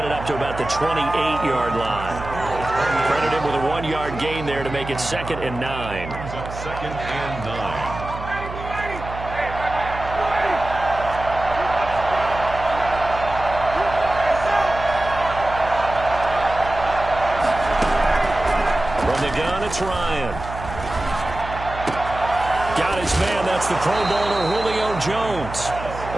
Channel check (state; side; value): noise; right; hum, 10 dB below the sound